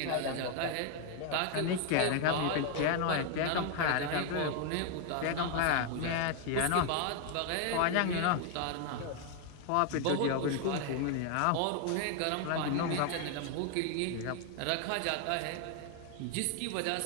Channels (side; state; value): both; different; correlation 0.00